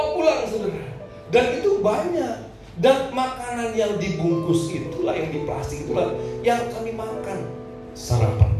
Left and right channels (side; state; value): both; identical; correlation 1.00